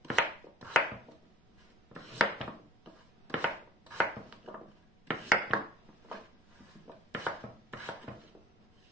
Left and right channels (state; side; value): normal; both; correlation 0.49